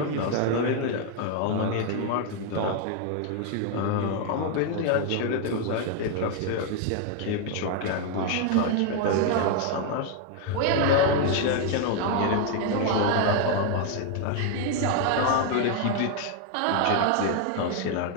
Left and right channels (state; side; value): different; both; correlation 0.00